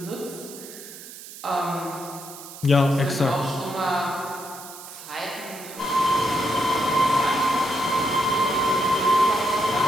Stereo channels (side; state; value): right; noise; hiss, 15 dB below the sound